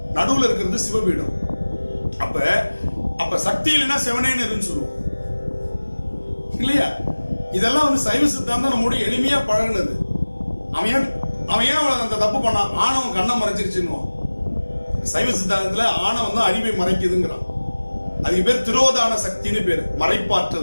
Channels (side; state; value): both; inverted; correlation -1.00